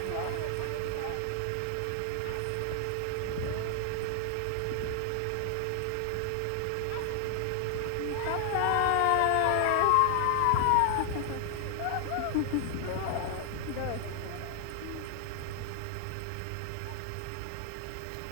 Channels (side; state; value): both; different; correlation 0.00